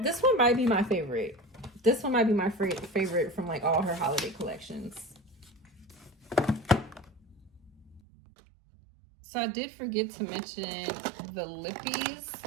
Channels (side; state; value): left; drops out; at 8.0 s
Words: one might be my favorite. This one might be my favorite from like all her holiday collections. So I did forget to mention the lippies.